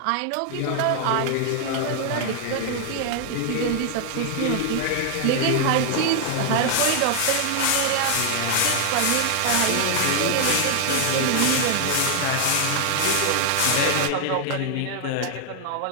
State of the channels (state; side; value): different; both; correlation 0.00